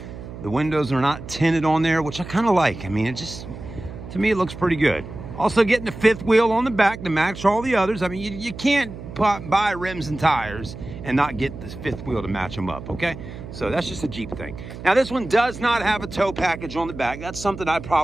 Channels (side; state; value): right; noise; hum, 12 dB below the sound